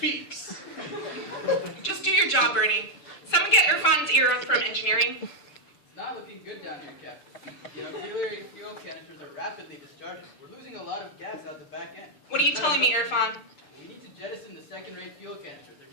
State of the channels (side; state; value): right; late; 6.7 ms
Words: Just do your job, Bernie. Someone get Irfan's ear from engineering. It's not looking good down here, Captain. The auxiliary fuel canisters are rapidly discharging. We're losing a lot of gas out the back end. What are you telling me, Irfan? We need to jettison the second-rate fuel canisters. They're